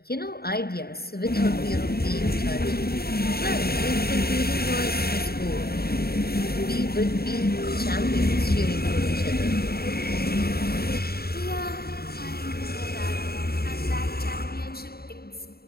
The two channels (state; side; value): late; right; 0.45 ms